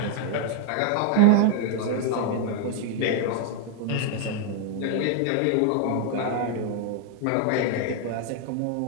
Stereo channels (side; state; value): both; different; correlation 0.00